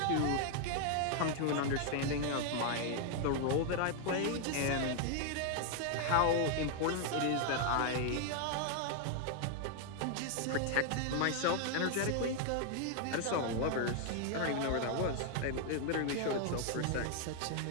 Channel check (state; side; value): different; both; correlation 0.00